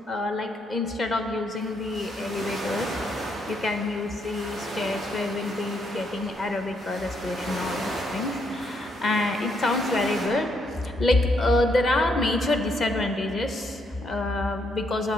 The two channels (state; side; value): normal; both; correlation 0.75